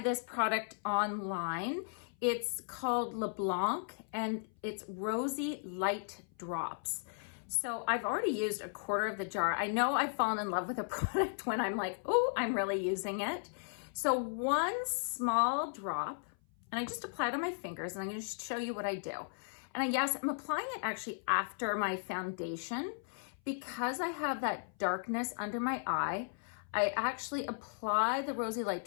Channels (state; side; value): silent; right; 54 dB below the other